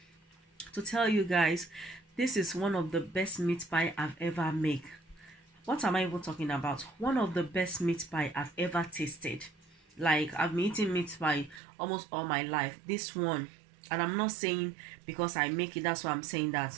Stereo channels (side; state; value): left; drops out; at 11.6 s